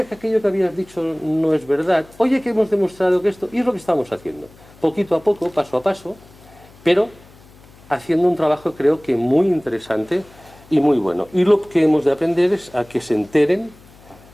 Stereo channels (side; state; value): left; noise; hum, 25 dB below the sound